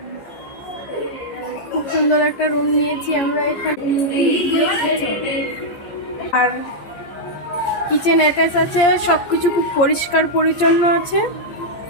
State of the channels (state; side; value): late; right; 14 ms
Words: খুব সুন্দর একটা রুম নিয়েছি আমরা এখানে, আর কিচেন অ্যাটাচ আছে, সব কিছু খুব পরিষ্কার পরিচ্ছন্ন আছে।